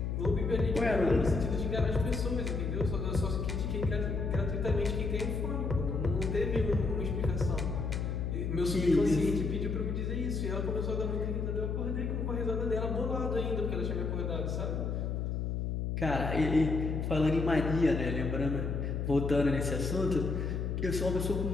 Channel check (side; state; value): left; noise; hum, 1 dB below the sound